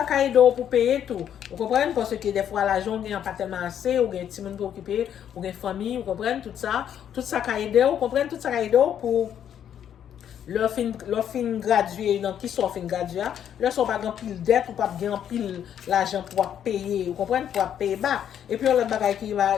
caille d'eau pour payer tout vous comprenez parce que des fois l'argent gagne pas tellement assez ou gagne petit monde pour occuper ou gagne famille vous comprenez tout ça caille d'eau vous comprenez tout ça caille d'eau pour leur fin gradué dans qui sont fin gradué leur sont pas grand pile dette ou pas grand pile l'argent pour payer vous comprenez pour payer bas et puis on l'autre bagaille qui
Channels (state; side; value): quieter; right; 9.5 dB